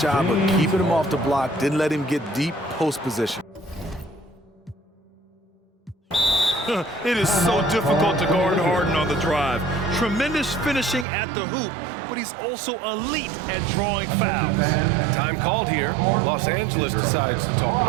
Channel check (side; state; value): left; drops out; at 11.1 s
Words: of keeping him off the block, didn't let him get deep post position. It is so difficult to guard Harden on the drive. Tremendous finishing at the hoop, but he's also elite at drawing fouls. Time called here. Los Angeles decides to talk it